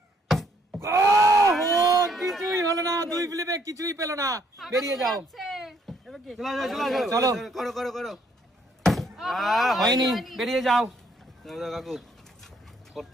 কিছুই হলো না, 2 ফ্লিপে কিছুই পেলো না, বেরিয়ে যাও। চলো চলো চলো চলো করো করো করো। হয়নি, বেরিয়ে যাও। দাও দাও কাকু,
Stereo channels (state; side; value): normal; both; correlation 0.68